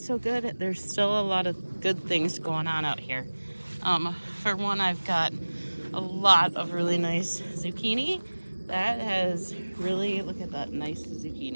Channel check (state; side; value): inverted; both; correlation -1.00